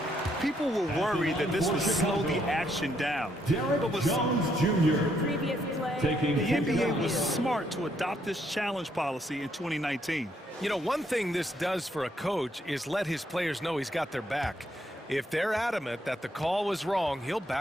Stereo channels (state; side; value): normal; both; correlation 0.73